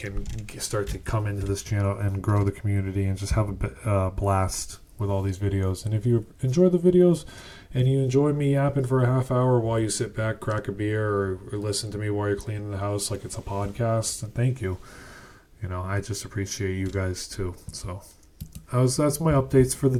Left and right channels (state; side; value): identical; both; correlation 1.00